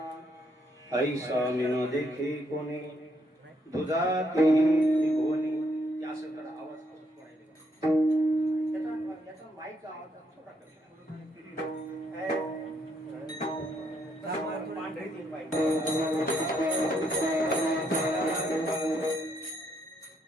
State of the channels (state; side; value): normal; both; correlation 0.73